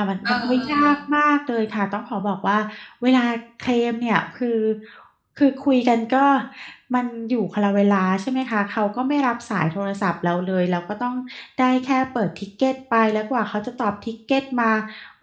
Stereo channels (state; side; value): identical; both; correlation 1.00